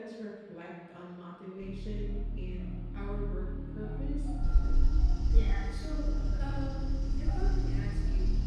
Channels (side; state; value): both; identical; correlation 1.00